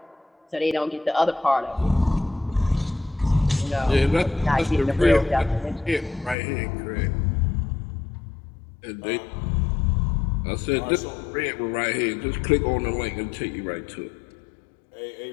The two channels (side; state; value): right; drops out; at 6.4 s